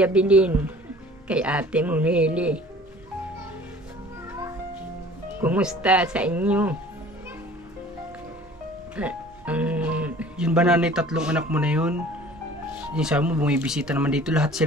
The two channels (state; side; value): normal; both; correlation 0.48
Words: kay Ate Munili. Kumusta sa inyo? Yun ba nanay, tatlong anak mo na yun? Yung sabi mo, bumibisita naman dito. Lahat